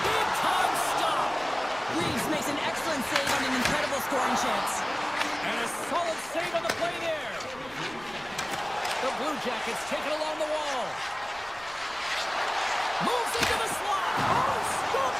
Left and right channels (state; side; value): noise; right; rumble, 22 dB below the sound